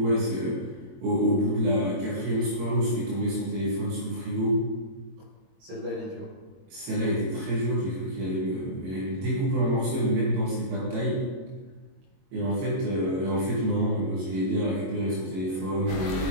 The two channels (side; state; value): left; late; 22 ms